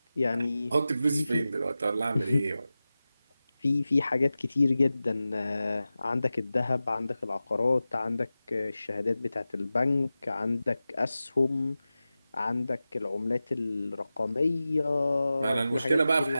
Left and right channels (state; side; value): inverted; both; correlation -0.95